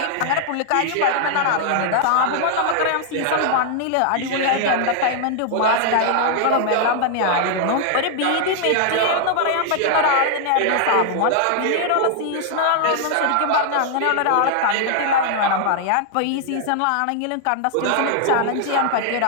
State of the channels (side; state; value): both; different; correlation -0.01